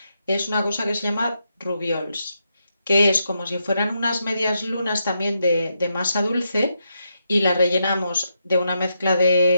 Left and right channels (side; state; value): both; inverted; correlation -0.82